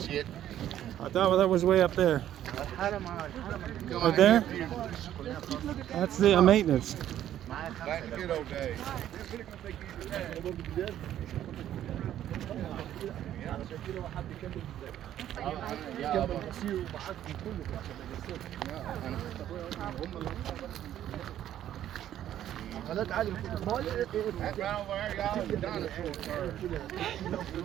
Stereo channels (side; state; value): left; quieter; 11.6 dB